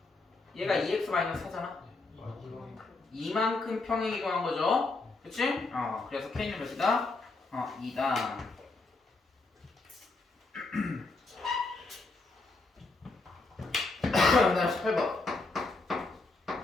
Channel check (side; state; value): right; quieter; 3.5 dB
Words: 얘가 2x-4잖아. 이만큼 평행 이동한 거죠. 그치? 그래서 k는 몇이다? 2다. 그 다음 18번.